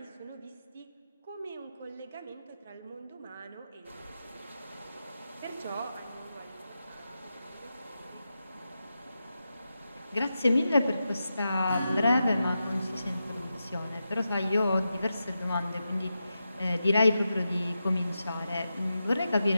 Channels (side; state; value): both; inverted; correlation -0.89